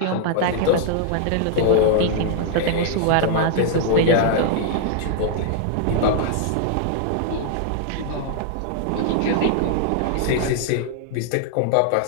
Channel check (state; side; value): different; both; correlation -0.01